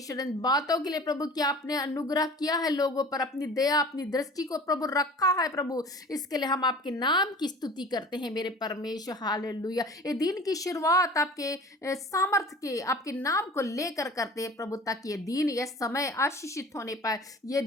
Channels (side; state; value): both; normal; correlation 0.42